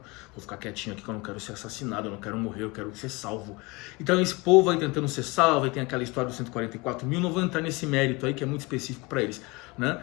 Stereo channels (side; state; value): right; quieter; 25.3 dB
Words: Vou ficar quietinho aqui que eu não quero ser assassinado, eu não quero morrer, eu quero ser salvo. Então esse povo vai tentando ser salvo, e tem aquela história dos 144 mil, não vou entrar nesse mérito aí que é muito específico para eles, né?